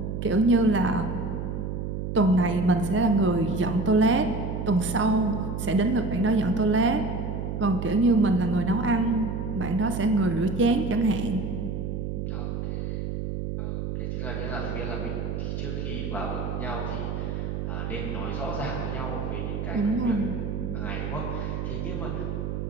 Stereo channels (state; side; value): noise; right; hum, 3 dB below the sound